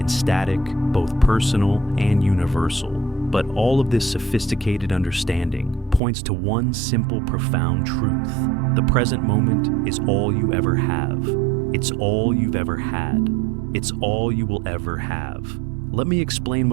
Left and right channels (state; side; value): drops out; left; at 6.0 s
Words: and static, both personal and universal. But all of this sophisticated understanding points to one simple, profound truth. The present moment is all you ever have. It's all you've ever had. It's all you will ever have. Let me explain